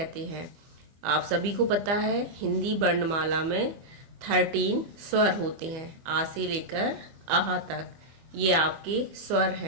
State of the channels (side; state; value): left; late; 25 ms